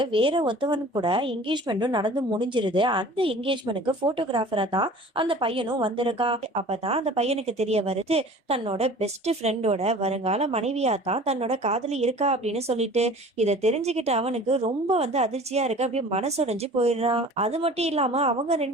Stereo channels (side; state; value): both; normal; correlation 0.44